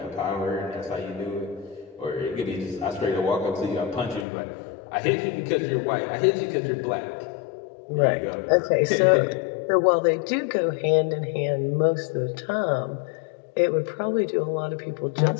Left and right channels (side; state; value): right; drops out; at 4.2 s